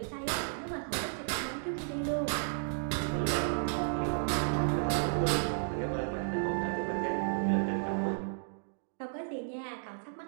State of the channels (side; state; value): left; silent; digital silence